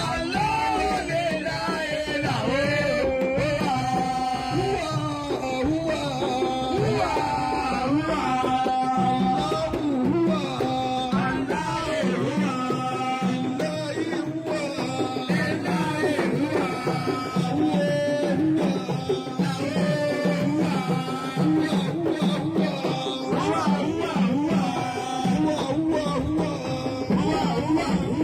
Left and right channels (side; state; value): both; identical; correlation 1.00